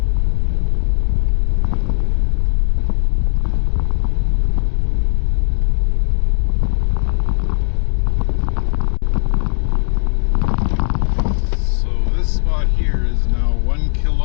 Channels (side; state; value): right; silent; 68 dB below the other